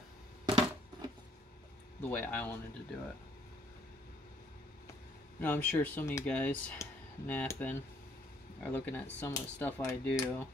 the way I wanted to do it. Now I'm sure some of you guys napping are looking at some of the stuff I do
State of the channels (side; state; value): both; normal; correlation 0.65